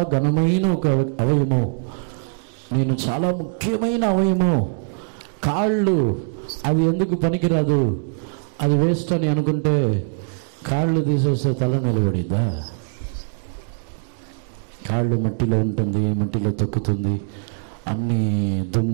ఘనమైన ఒక అవయము, నేను చాలా ముఖ్యమైన అవయము, కాళ్ళు అది ఎందుకు పనికిరాదు, అది వేస్ట్ అని అనుకుంటే కాళ్ళు తీసేస్తే తల నిలబడిద్దా? కాళ్ళు మట్టిలో ఉంటుంది, మట్టిలో తొక్కుతుంది, అన్ని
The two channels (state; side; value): silent; left; 64 dB below the other